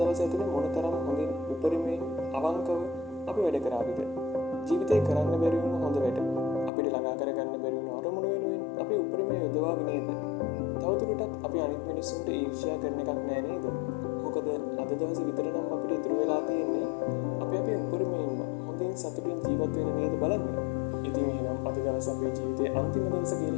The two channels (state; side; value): drops out; right; at 6.7 s